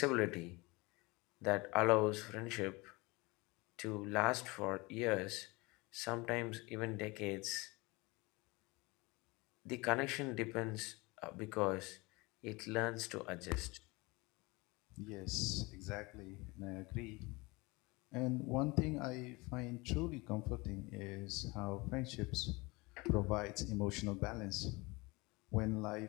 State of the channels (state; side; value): quieter; right; 24.7 dB